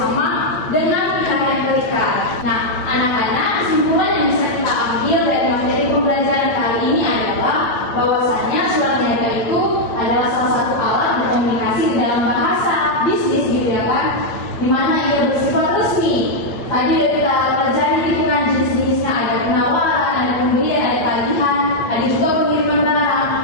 dengan pihak yang terikat. Nah, anak-anak, kesimpulan yang bisa kita ambil dari materi pembelajaran kali ini adalah bahwasannya surat niaga itu adalah salah satu alat berkomunikasi di dalam bahasa bisnis gitu ya kan, di mana ia bersifat resmi. Tadi udah kita pelajari gitu kan jenis-jenisnya, ada penawaran, ada pembelian, ada tagihan, ada juga pengiriman barang.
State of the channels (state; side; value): late; right; 9.0 ms